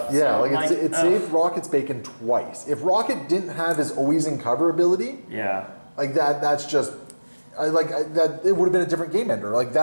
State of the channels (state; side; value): inverted; both; correlation -1.00